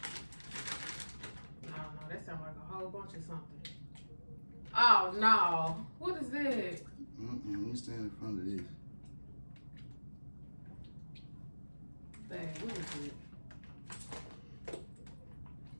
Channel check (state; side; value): inverted; both; correlation -1.00